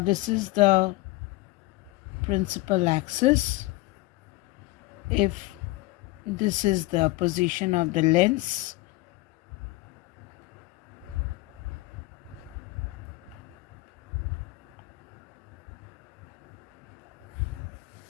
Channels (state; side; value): quieter; right; 20.3 dB